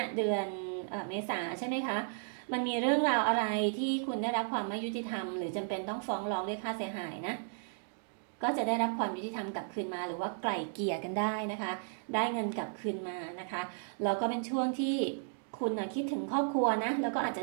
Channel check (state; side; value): silent; left; digital silence